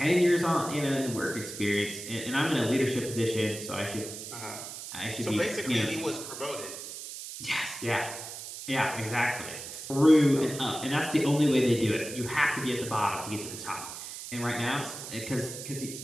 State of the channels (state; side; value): noise; right; hiss, 10 dB below the sound